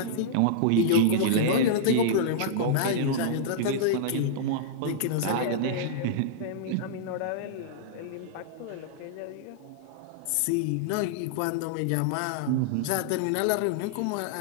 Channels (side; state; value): both; different; correlation -0.02